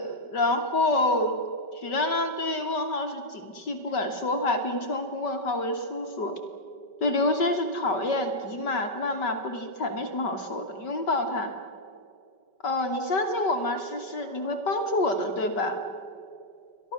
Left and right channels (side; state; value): right; late; 5.2 ms